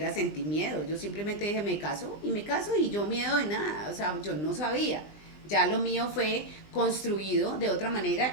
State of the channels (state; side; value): late; right; 20 ms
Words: sentí miedo, yo simplemente dije me caso y yo miedo de nada, o sea, yo no sabía. Ya lo mío fue construido de otra manera